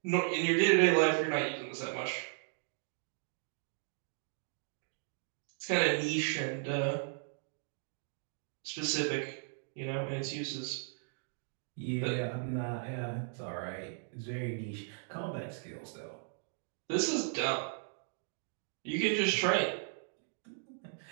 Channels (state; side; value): silent; left; digital silence